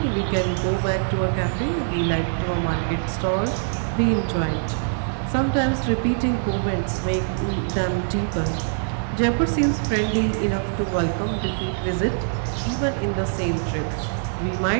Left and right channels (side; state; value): left; silent; digital silence